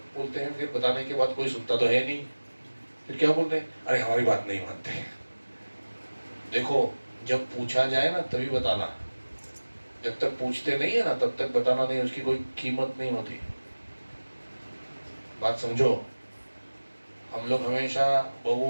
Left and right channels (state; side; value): inverted; both; correlation -1.00